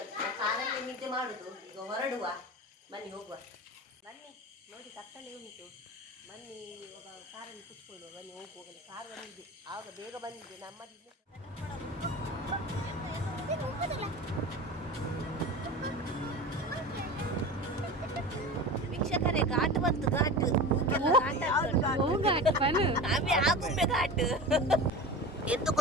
ಕಾರಲ್ಲಿ ನಿದ್ದೆ ಮಾಡುದು. ಈಗ ಹೊರಡುವ, ಬನ್ನಿ ಹೋಗುವ. ಬನ್ನಿ ನೋಡಿ, ಕತ್ತಲೆ ಉಂಟು. ಬನ್ನಿ ಕಾರಲ್ಲಿ ಕುತ್ಕೊಳ್ಳುವ. ಬನ್ನಿ ಹೋಗುವ. ಕಾರ್ ಬಂದಿದೆ, ಆಗ ಬೇಗ ಬಂದಿದೆ. ನಮ್ಮದಿಲ್ಲ ವೀಕ್ಷಕರೇ, ಘಾಟ್ ಬಂತು. ಘಾಟ್ ಆಗುಂಬೆ ಘಾಟ್. ಎಂತ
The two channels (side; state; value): both; normal; correlation 0.31